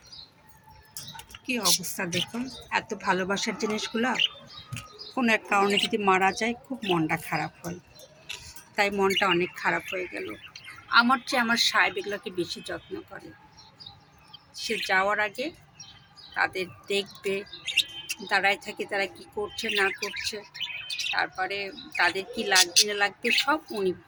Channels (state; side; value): identical; both; correlation 1.00